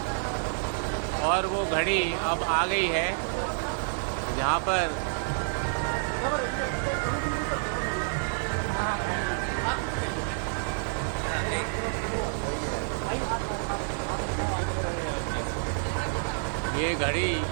और वो घड़ी अब आ गई है जहाँ पर ये घड़ी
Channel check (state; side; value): silent; left; 59 dB below the other